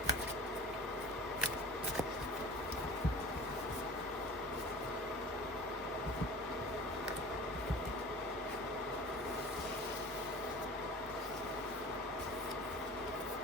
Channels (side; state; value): both; normal; correlation 0.40